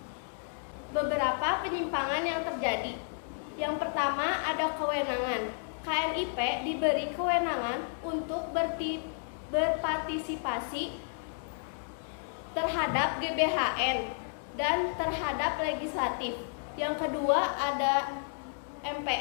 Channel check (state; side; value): silent; right; digital silence